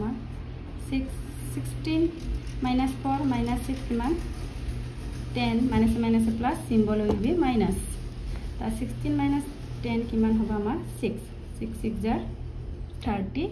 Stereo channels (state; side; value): identical; both; correlation 1.00